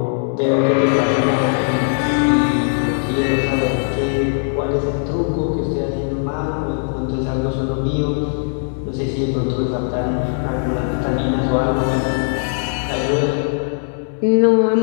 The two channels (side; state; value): right; silent; 66 dB below the other